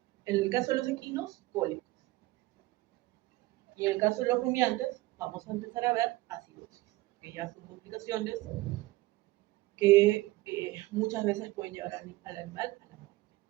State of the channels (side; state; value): left; quieter; 19.4 dB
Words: en el caso de los equinos, cólicos. Y en el caso de los rumiantes, vamos a empezar a ver acidosis, que ya son complicaciones que muchas veces pueden llevar al animal a la muerte.